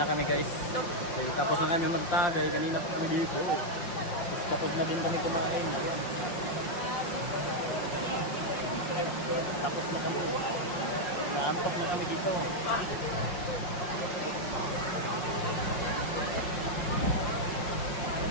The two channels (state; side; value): late; right; 5.6 ms